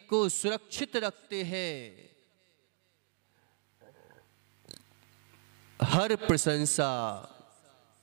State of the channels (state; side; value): silent; left; 54 dB below the other